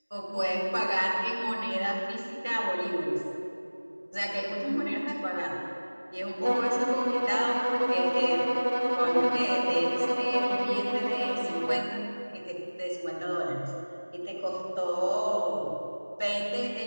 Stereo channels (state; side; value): inverted; both; correlation -1.00